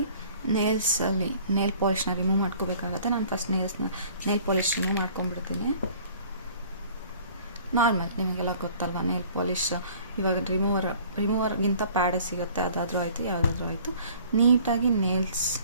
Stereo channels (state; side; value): inverted; both; correlation -0.52